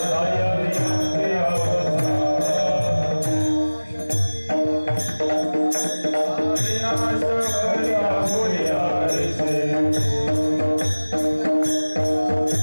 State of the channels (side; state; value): both; inverted; correlation -1.00